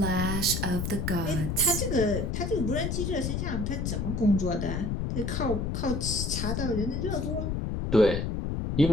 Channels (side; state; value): left; noise; rumble, 1 dB below the sound